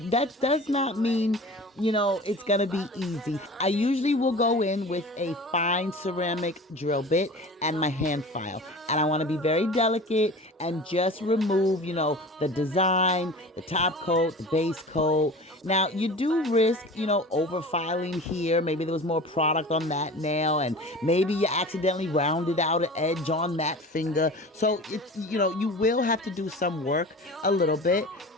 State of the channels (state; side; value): normal; both; correlation 0.37